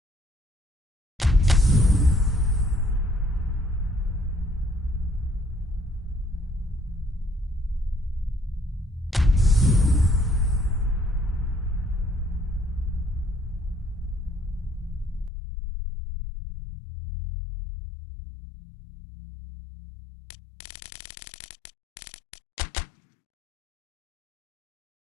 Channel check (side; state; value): right; drops out; at 15.3 s